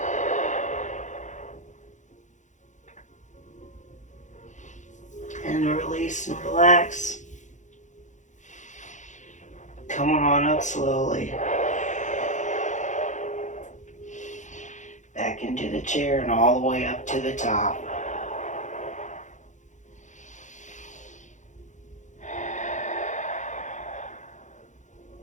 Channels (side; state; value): right; late; 0.35 ms